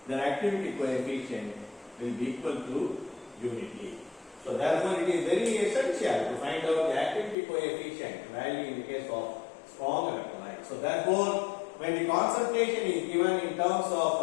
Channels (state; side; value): drops out; right; at 7.4 s